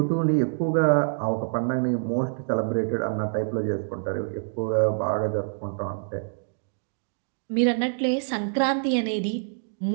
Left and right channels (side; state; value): left; silent; digital silence